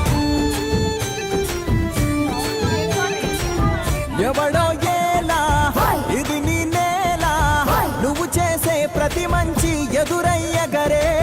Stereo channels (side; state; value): both; identical; correlation 1.00